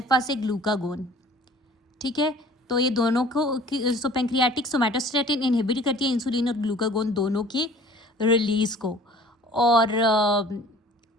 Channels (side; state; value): both; normal; correlation 0.49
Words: से ग्लूकागोन, ठीक है। तो ये दोनों को पैंक्रियाटिक सोमैटोस्टैटिन इनहिबिट करती है इंसुलिन और ग्लूकागोन दोनों की रिलीज को। और